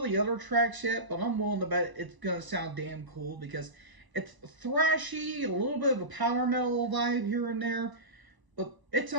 other tracks yet, but I'm willing to bet it's gonna sound damn cool because it's thrashy, a little bit of a power metal vibe here and there, but it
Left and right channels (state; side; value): late; left; 1.0 ms